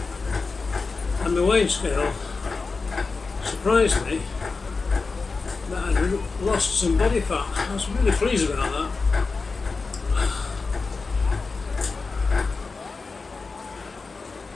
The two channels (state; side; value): quieter; right; 4.2 dB